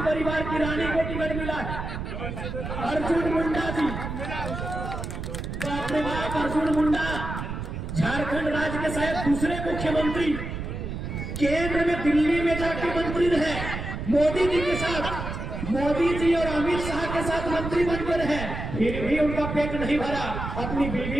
परिवार की रानी को टिकट मिला है। अर्जुन मुंडा जी, बाप रे बाप, अर्जुन मुंडा झारखंड राज्य के शायद दूसरे मुख्यमंत्री, केंद्र में दिल्ली में जाके मंत्री रहे, मोदी जी के साथ, मोदी जी और अमित शाह के साथ मंत्री बनकर रहे, फिर भी उनका पेट नहीं भरा, अपनी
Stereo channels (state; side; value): noise; right; rumble, 6 dB below the sound